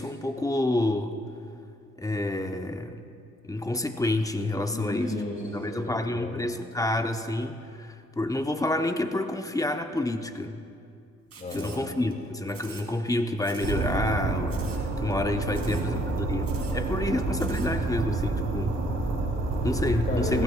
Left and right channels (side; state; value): both; normal; correlation 0.68